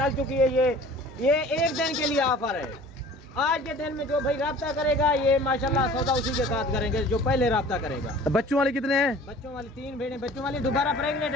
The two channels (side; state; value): both; normal; correlation 0.46